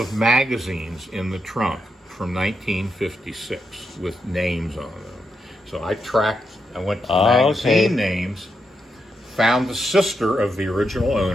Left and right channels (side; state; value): both; normal; correlation 0.83